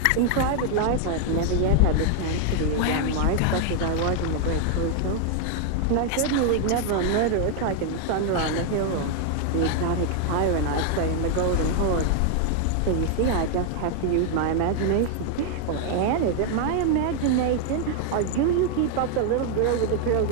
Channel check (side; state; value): both; different; correlation 0.00